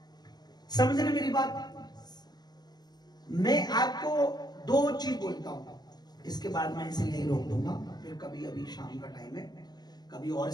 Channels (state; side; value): late; right; 0.20 ms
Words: समझ रहे मेरी बात? मैं आपको दो चीज बोलता हूं, इसके बाद मैं इसे यहीं रोक दूंगा, फिर कभी अभी शाम का टाइम है, कभी और